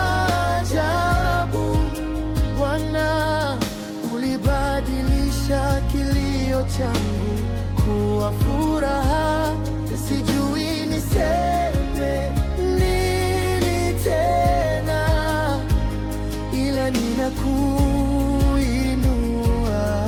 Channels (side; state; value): both; identical; correlation 1.00